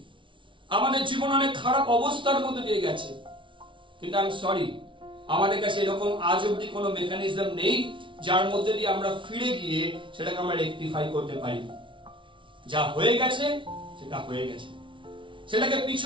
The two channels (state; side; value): late; left; 0.24 ms